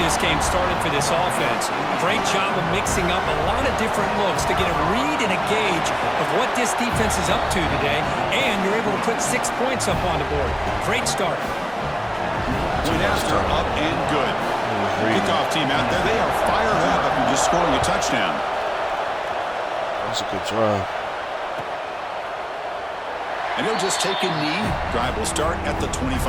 game started for this offense. Great job of mixing up a lot of different looks to get a read and a gauge of what this defense is up to today, and you're able to put 6 points up on the board. Great start. Point after up and good. Kickoff team out there, they are fired up after just scoring a touchdown. That's a good drive. And he'll just take a knee. Drive will start at the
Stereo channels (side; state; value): both; identical; correlation 1.00